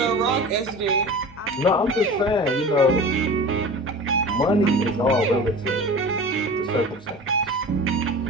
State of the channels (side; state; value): both; normal; correlation 0.36